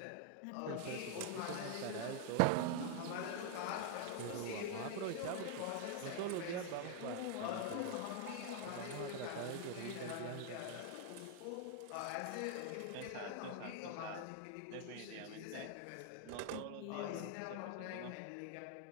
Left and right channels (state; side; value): different; both; correlation 0.00